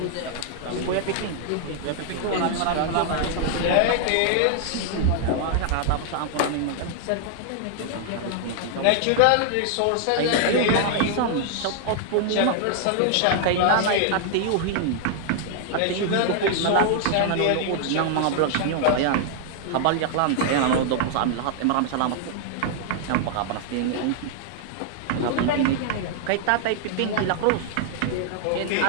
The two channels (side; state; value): both; different; correlation -0.01